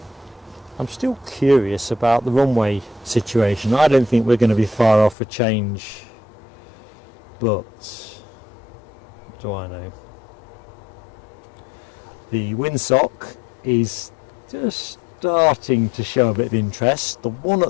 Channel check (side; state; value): right; drops out; at 5.2 s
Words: I'm still curious about the runway situation. I don't think we're going to be far off a change, but what do I know? The windsock is just starting to show a bit of interest. The one